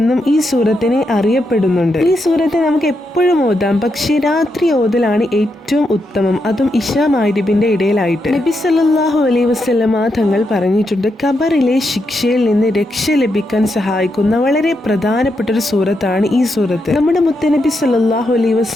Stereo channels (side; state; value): both; normal; correlation 0.83